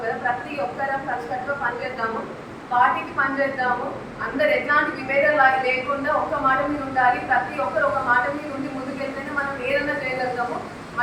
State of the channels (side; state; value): both; identical; correlation 1.00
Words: కదా. ప్రతి ఒక్కరం కలిసికట్టుగా పనిచేద్దాము, పార్టీకి పనిచేద్దాము. అందరు ఎట్లాంటి విభేదాలు లేకుండా ఒక్క మాట మీద ఉండాలి. ప్రతి ఒక్కరు ఒక మాట మీద ఉండి ముందుకెళ్తేనే మనం ఏదైనా చేయగలుగుతాము.